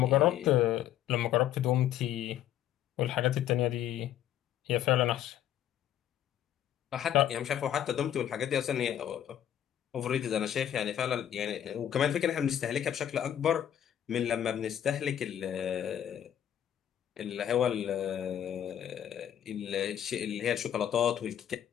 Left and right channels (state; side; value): quieter; right; 10.7 dB